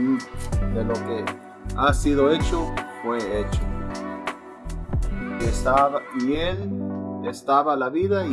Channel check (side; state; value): both; identical; correlation 1.00